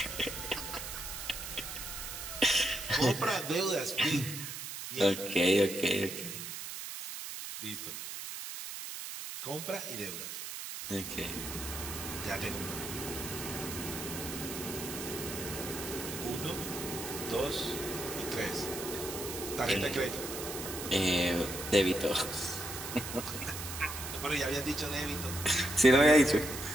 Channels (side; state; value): right; noise; hiss, 7 dB below the sound